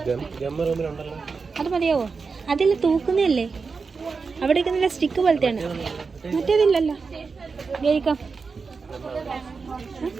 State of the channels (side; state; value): left; quieter; 4.8 dB